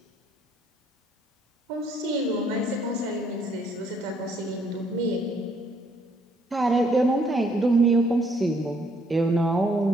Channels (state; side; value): normal; both; correlation 0.67